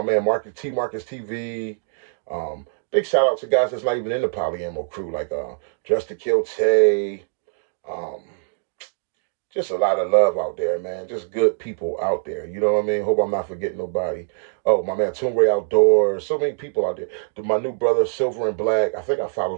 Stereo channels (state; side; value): silent; left; digital silence